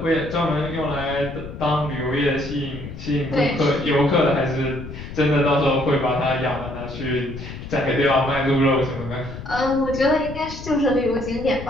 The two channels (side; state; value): left; noise; rumble, 11 dB below the sound